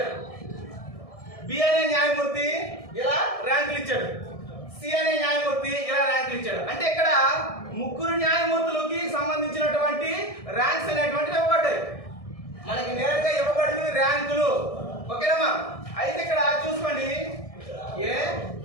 బి అనే న్యాయమూర్తి ఇలా ర్యాంకులు ఇచ్చాడు. సి అనే న్యాయమూర్తి ఇలా ర్యాంకులు ఇచ్చాడు. అంటే ఇక్కడ 3 న్యాయమూర్తులకి సంబంధించినటువంటి ర్యాంక్స్ అనేటువంటివి ఇవ్వబడ్డాయి. మనకి నేరుగా ఇవ్వబడినవి ర్యాంకులు. ఓకేనమ్మా? అయితే ఇక్కడ చూసుకోండి, ఏ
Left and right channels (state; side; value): late; right; 1.6 ms